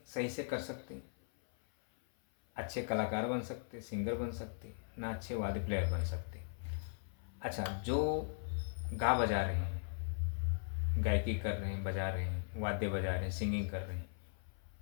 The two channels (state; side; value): silent; right; 52 dB below the other